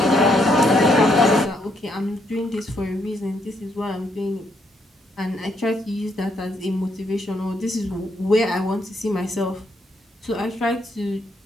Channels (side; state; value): both; normal; correlation 0.74